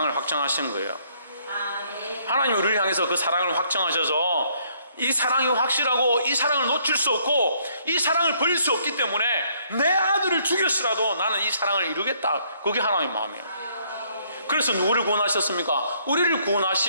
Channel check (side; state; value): both; inverted; correlation -0.67